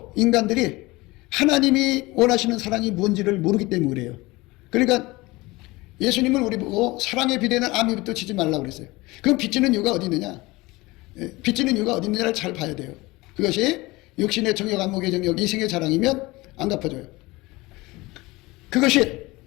인간들이 하나님이 원하시는 사랑이 뭔지를 모르기 때문에 그래요. 그러니까 예수님은 우리 보고 사랑에 비대는 아미부터 치지 말라고 그랬어요. 그럼 빚지는 이유가 어디 있느냐? 빚지는 이유가 어디 있느냐를 잘 봐야 돼요. 그것이 육신의 정욕, 안목의 정욕, 이생의 자랑이면 안 갚아줘요. 그것이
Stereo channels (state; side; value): quieter; right; 21.7 dB